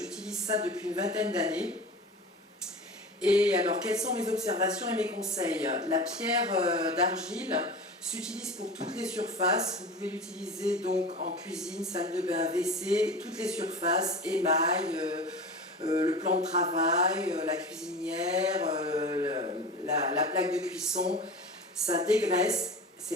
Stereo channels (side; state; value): both; normal; correlation 0.32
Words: ça depuis une vingtaine d'années. Et alors quelles sont mes observations et mes conseils? La pierre d'argile s'utilise pour toutes les surfaces. Vous pouvez l'utiliser donc en cuisine, salle de bain, WC, toutes les surfaces, émail, le plan de travail, la cuisinière, la plaque de cuisson. Ça dégraisse,